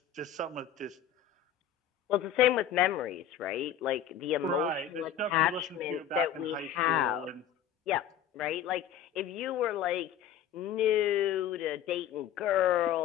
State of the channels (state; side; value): quieter; right; 9.2 dB